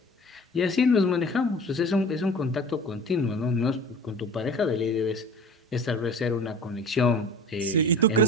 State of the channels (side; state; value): both; normal; correlation 0.40